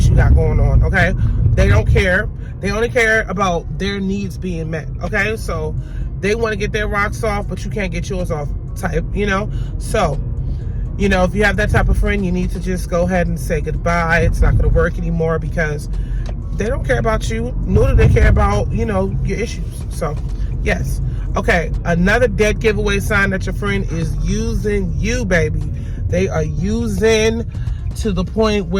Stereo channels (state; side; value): identical; both; correlation 1.00